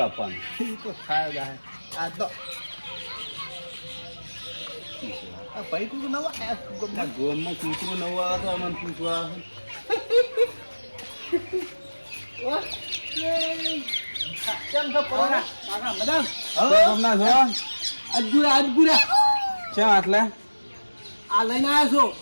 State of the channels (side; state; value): both; inverted; correlation -1.00